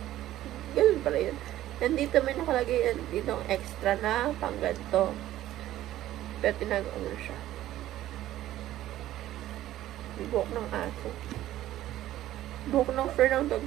ganun pala yun. And dito may nakalagay yan, dito extra na pang ganito. Pero tinagawa mo siya. Buhok ng aso. Buhok ng fur ng dog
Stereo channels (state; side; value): quieter; left; 13.8 dB